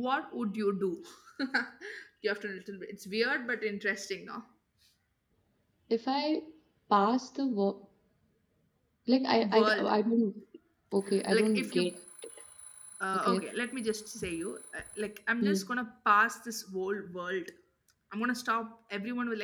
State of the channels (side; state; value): both; identical; correlation 1.00